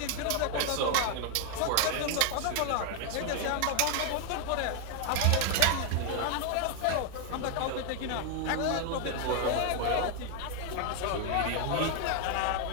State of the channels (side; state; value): both; different; correlation 0.00